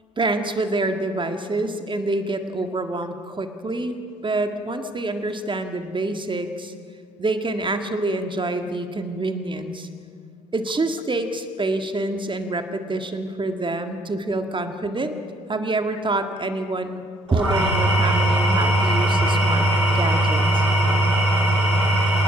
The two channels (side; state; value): both; normal; correlation 0.65